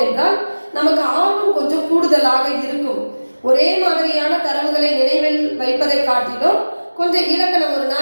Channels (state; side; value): inverted; both; correlation -1.00